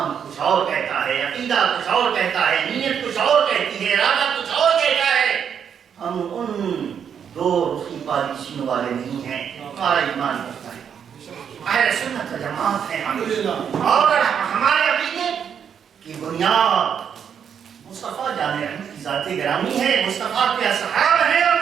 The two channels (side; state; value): left; quieter; 7.9 dB